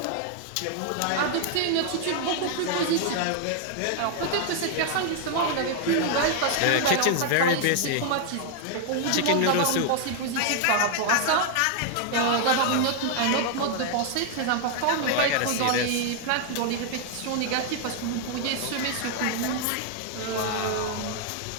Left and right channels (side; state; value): both; different; correlation 0.00